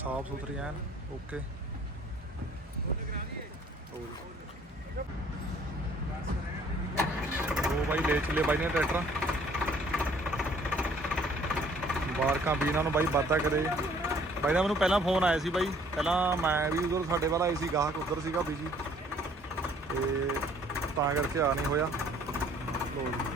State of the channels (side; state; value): both; normal; correlation 0.58